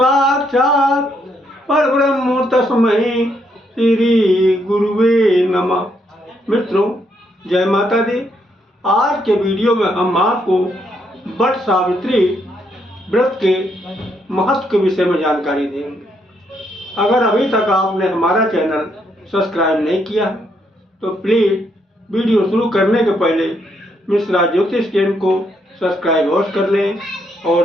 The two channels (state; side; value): normal; both; correlation 0.75